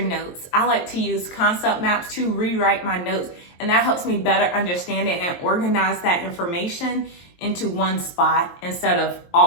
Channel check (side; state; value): right; late; 23 ms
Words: notes. I like to use concept maps to rewrite my notes, and that helps me better understand it and organize that information into one spot instead of